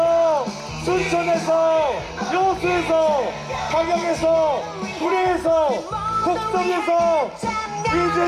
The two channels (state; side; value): identical; both; correlation 1.00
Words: 순천에서, 여수에서, 광양에서, 구례에서, 곡성에서